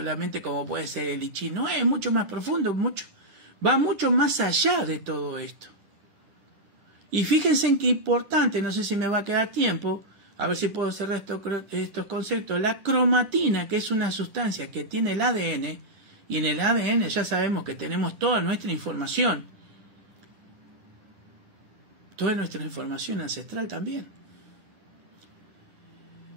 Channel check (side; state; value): left; late; 10 ms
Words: como puede ser el I Ching, no, es mucho más profundo, va mucho más allá de todo esto. Y fíjense en qué importante, no sé si me va a quedar tiempo, a ver si puedo cerrar estos conceptos. La cromatina, que es una sustancia que tiene el ADN, y en el ADN ya sabemos que tenemos toda nuestra información ancestral también.